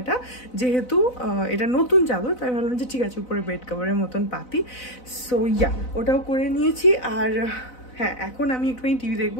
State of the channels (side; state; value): right; late; 4.0 ms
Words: যেহেতু এটা নতুন চাদর, তাই ভাবলাম যে ঠিক আছে উপরে বেড কভারের মতন পাতি। সো ইয়া, ওটাও করে নিয়েছি। আর হ্যাঁ, এখন আমি একটুখানি টিভি